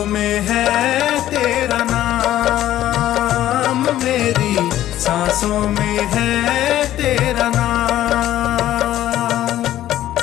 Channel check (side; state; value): right; quieter; 13.1 dB